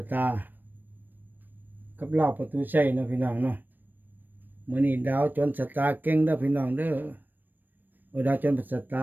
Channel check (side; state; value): left; late; 0.091 ms